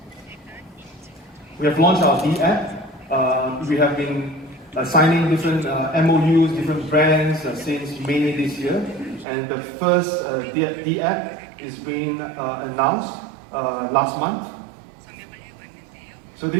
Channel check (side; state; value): left; drops out; at 9.2 s